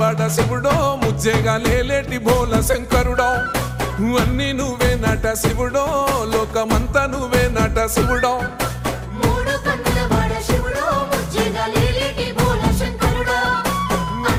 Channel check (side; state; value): both; identical; correlation 1.00